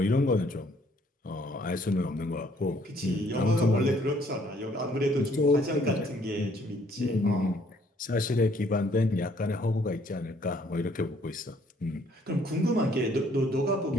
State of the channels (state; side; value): normal; both; correlation 0.63